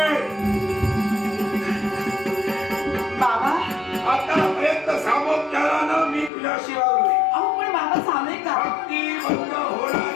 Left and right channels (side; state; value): right; drops out; at 6.3 s